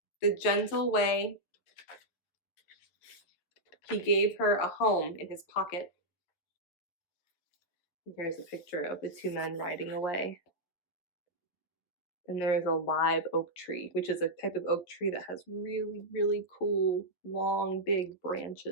the gentle way he gave her a home in his pocket. Here's a picture of the two men riding away. And there's a live oak tree, which is a type of oak tree that has really, really cool, long, big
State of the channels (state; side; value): late; right; 11 ms